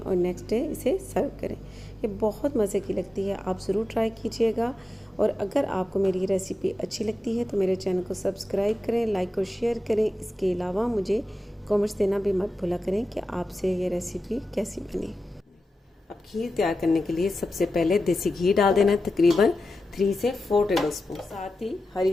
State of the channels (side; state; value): both; normal; correlation 0.92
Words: नेक्स्ट डे इसे सर्व करें। ये बहुत मज़े की लगती है, आप ज़रूर ट्राई कीजिएगा। और अगर आपको मेरी रेसिपी अच्छी लगती है तो मेरे चैनल को सब्सक्राइब करें, लाइक और शेयर करें। इसके अलावा मुझे कमेंट्स देना भी मत भूला करें कि आपसे ये रेसिपी कैसी बनी। अब खीर तैयार करने के लिए सबसे पहले देसी घी डाल देना है, तकरीबन 3 से 4 टेबल स्पून। साथ ही हरी